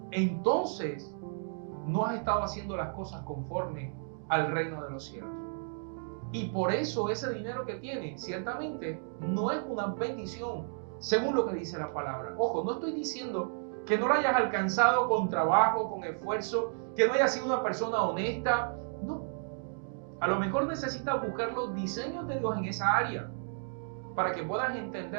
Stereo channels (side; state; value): left; silent; digital silence